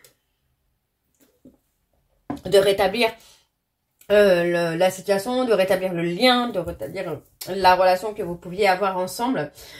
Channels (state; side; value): identical; both; correlation 1.00